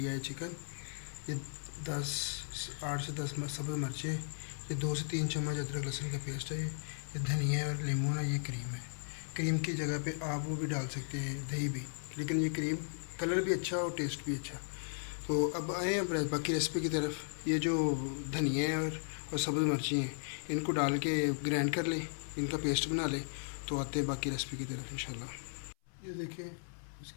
है चिकन। ये 8 से 10 सब्ज़ मिर्चें, ये 2 से 3 चम्मच अदरक लहसुन का पेस्ट है, ये धनिया और लेमन है, ये क्रीम है। क्रीम की जगह पे आप वो भी डाल सकते हैं, दही भी, लेकिन ये क्रीम कलर भी अच्छा और टेस्ट भी अच्छा। तो अब आए अब बाकी रेसिपी की तरफ। ये जो धनिया है और सब्ज़ मिर्ची हैं, इनको डाल के ग्राइंड कर लें, इनका पेस्ट बना लें, तो आते हैं बाकी रेसिपी की तरफ इंशाल्लाह। ये देखिए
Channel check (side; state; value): right; silent; 54 dB below the other